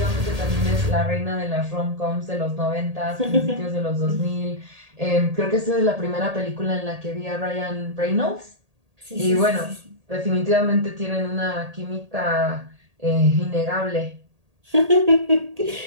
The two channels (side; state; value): left; late; 1.8 ms